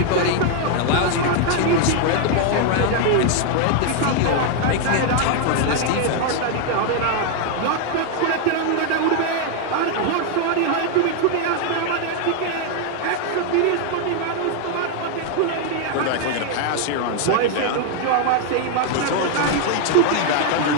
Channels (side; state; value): both; different; correlation 0.01